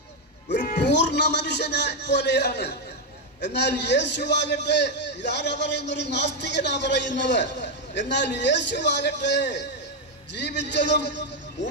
ഒരു പൂർണ്ണ മനുഷ്യനെ പോലെയാണ്. എന്നാൽ യേശുവാകട്ടെ, ഇതാരാ പറയുന്ന? ഒരു നാസ്തികനാ പറയുന്നത്. എന്നാൽ യേശുവാകട്ടെ ജീവിച്ചതും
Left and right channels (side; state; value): both; normal; correlation 0.04